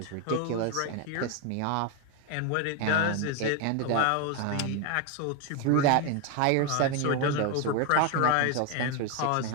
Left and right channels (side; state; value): both; different; correlation 0.01